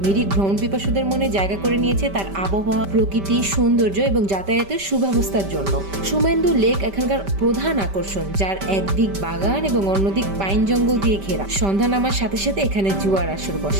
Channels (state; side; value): late; left; 5.1 ms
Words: মিরিক ভ্রমণ পিপাসুদের মনে জায়গা করে নিয়েছে তার আবহাওয়া, প্রকৃতি, সৌন্দর্য এবং যাতায়াতের সুব্যবস্থার জন্য। সুমেন্দু লেক এখানকার প্রধান আকর্ষণ, যার একদিক বাগান এবং অন্যদিক পাইন জঙ্গল দিয়ে ঘেরা। সন্ধ্যা নামার সাথে সাথে এখানে জুয়ার আসর